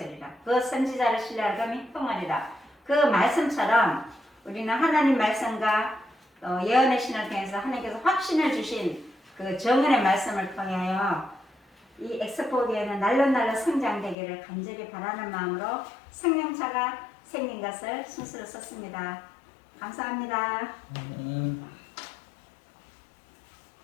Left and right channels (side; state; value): right; drops out; at 14.2 s